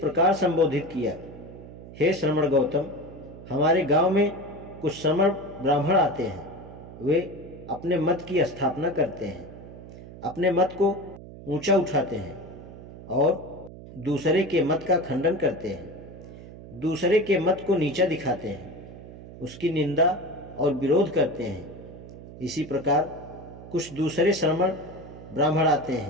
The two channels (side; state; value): right; noise; hum, 15 dB below the sound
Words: संबोधित किया, हे श्रमण गौतम, हमारे गांव में कुछ श्रमण ब्राह्मण आते हैं। वे अपने मत की स्थापना करते हैं, अपने मत को ऊंचा उठाते हैं और दूसरे के मत का खंडन करते हैं, दूसरे के मत को नीचा दिखाते हैं, उसकी निंदा और विरोध करते हैं। इसी प्रकार कुछ दूसरे श्रमण ब्राह्मण आते